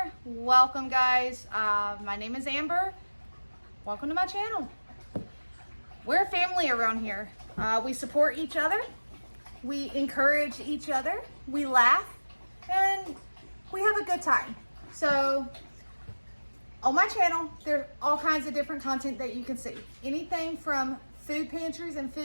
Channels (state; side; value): inverted; both; correlation -1.00